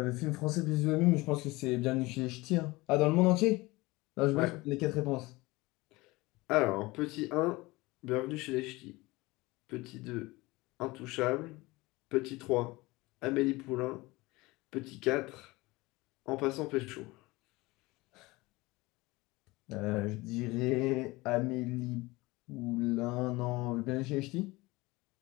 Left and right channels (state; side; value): quieter; right; 21.8 dB